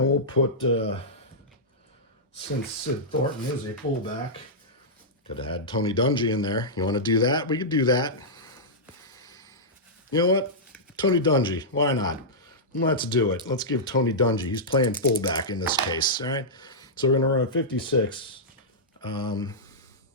we'll put, since Sid Thornton is a fullback, could have had Tony Dungy in there. You want to do that? We could do that. You know what? Tony Dungy. Why not? Let's do it. Let's give Tony Dungy. He's playing fullback in this case. All right. So we're going to run a 56.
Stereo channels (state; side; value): normal; both; correlation -0.11